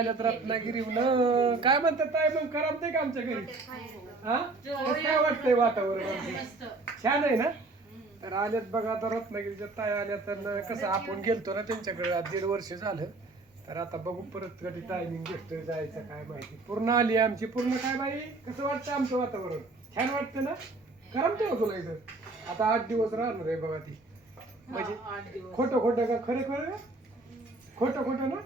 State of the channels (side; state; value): left; quieter; 3.4 dB